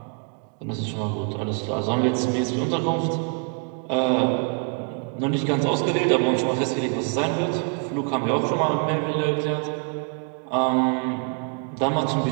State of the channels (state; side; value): quieter; left; 39.9 dB